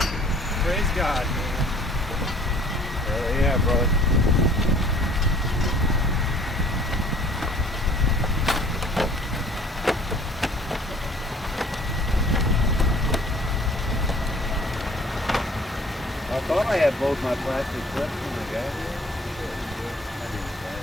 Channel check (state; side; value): normal; both; correlation 0.53